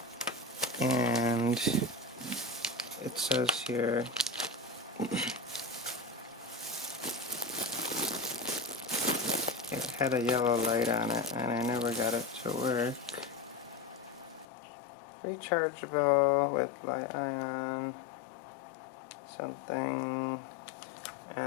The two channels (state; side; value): drops out; right; at 14.5 s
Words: and it says here it had a yellow light on it, and I never got it to work. Rechargeable with li-ion something,